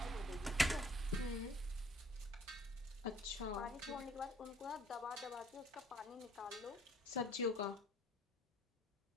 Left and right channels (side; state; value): both; normal; correlation 0.59